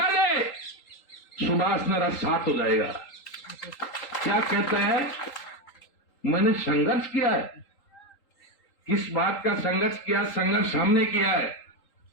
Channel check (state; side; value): late; right; 3.8 ms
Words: दे, सुभाष मेरा साथ हो जाएगा। क्या कहता है? मैंने संघर्ष किया है। किस बात का संघर्ष किया? संघर्ष हमने किया है।